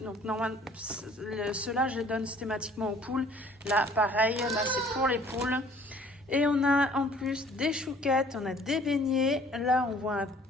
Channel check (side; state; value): both; normal; correlation 0.54